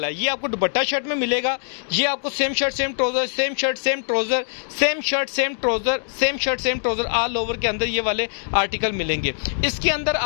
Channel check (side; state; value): right; silent; digital silence